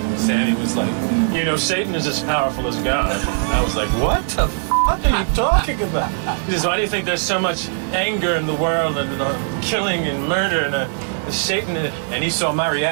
Sammy was like, you know, Satan is as powerful as God. I was like, what the f*** are you talking about? He says, why do you think there's so much anger in the world and killing and murder and Satan? And he saw my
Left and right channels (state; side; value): silent; left; digital silence